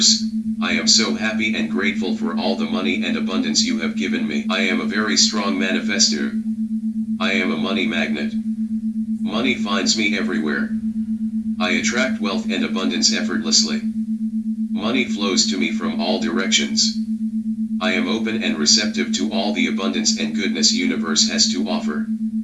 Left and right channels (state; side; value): identical; both; correlation 1.00